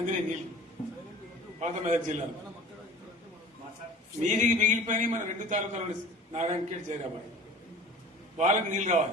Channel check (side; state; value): both; normal; correlation 0.43